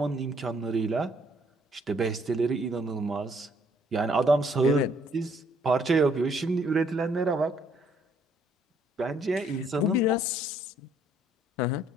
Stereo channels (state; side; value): normal; both; correlation 0.66